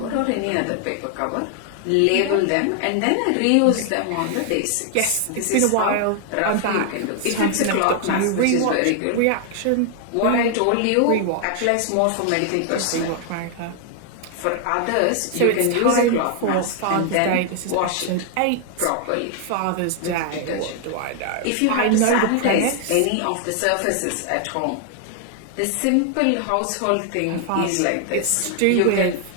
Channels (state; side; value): different; both; correlation 0.00